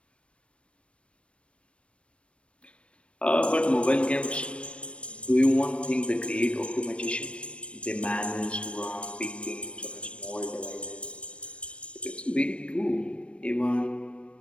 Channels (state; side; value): late; right; 0.060 ms